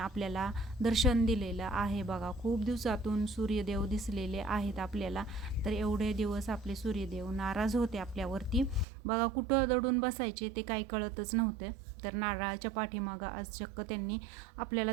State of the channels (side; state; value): left; drops out; at 8.8 s